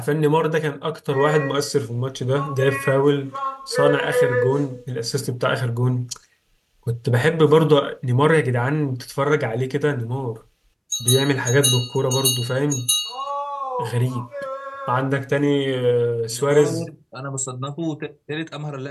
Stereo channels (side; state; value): both; identical; correlation 1.00